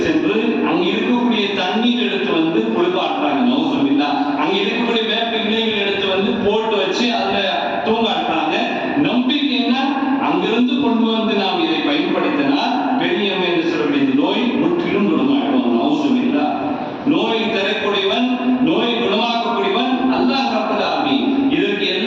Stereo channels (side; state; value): both; identical; correlation 1.00